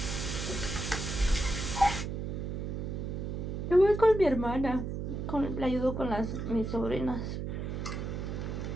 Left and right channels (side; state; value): right; noise; hum, 4 dB below the sound